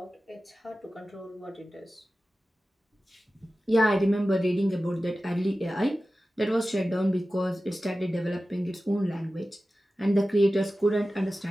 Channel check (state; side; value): normal; both; correlation 0.95